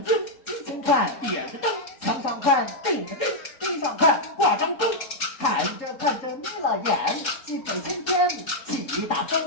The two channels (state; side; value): late; right; 3.7 ms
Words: 经，金前看点着灯，墙上看定着钉，地上看挂张钟，看着眯了眼，西北青天起大